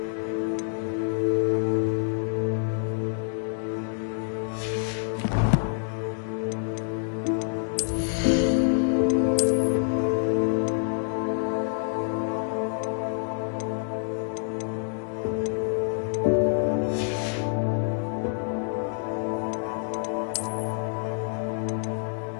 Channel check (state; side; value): silent; right; digital silence